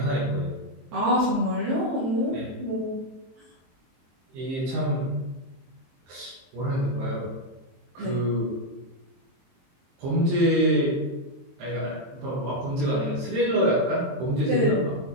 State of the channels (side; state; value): left; late; 23 ms